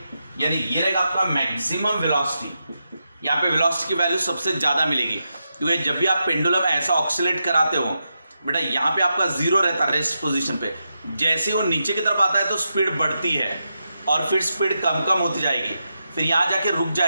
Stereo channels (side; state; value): both; inverted; correlation -0.86